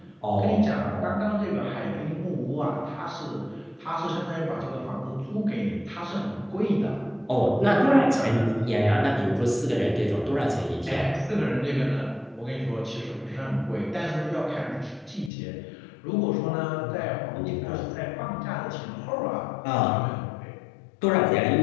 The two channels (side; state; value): right; drops out; at 15.3 s